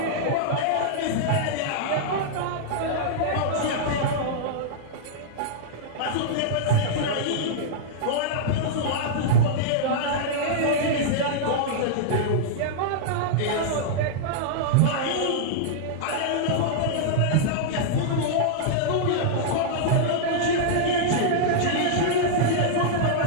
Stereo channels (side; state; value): both; different; correlation -0.02